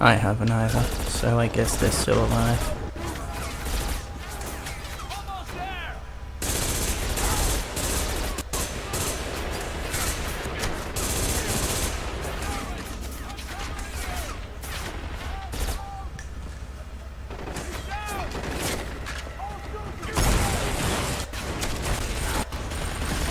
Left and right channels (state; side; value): identical; both; correlation 1.00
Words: I haven't either, so I guess they're still alive.